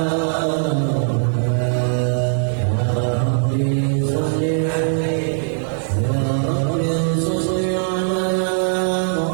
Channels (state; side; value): silent; left; 66 dB below the other